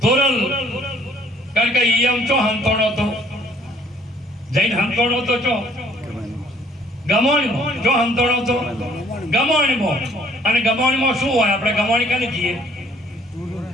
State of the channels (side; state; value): both; normal; correlation 0.60